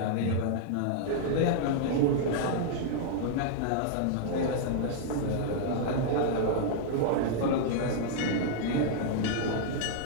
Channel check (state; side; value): different; both; correlation -0.01